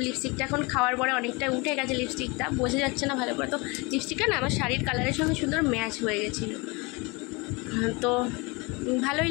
লিপস্টিকটা এখন খাওয়ার পরে অনেকটা উঠে গেছে, লিপস্টিকটা বোঝা যাচ্ছে না ভালো করে। তো লিপস্টিকটা না আমার শাড়ির কালারের সঙ্গে সুন্দর ম্যাচ হয়ে গেছিলো, তো ভালোই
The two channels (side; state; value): right; quieter; 27.1 dB